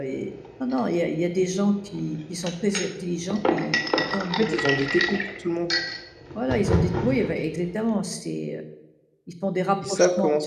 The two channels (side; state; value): both; identical; correlation 1.00